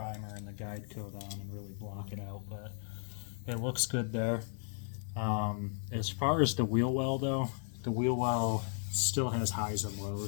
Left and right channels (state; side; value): silent; right; 54 dB below the other